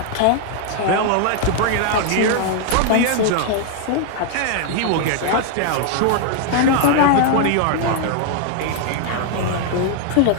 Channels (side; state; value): both; different; correlation 0.00